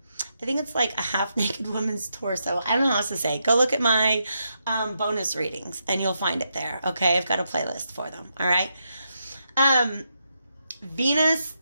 think it's like a half naked woman's torso. I don't know how else to say. Go look at my bonus readings and you'll find it there. Okay, I've got a playlist for them. All right. Venus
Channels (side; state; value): both; inverted; correlation -0.82